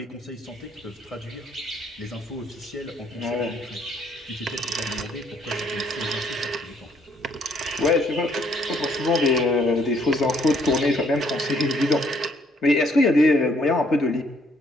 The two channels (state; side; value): normal; both; correlation 0.67